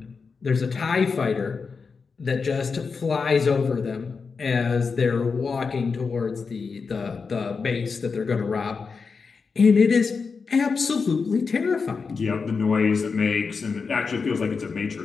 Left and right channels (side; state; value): right; quieter; 5.0 dB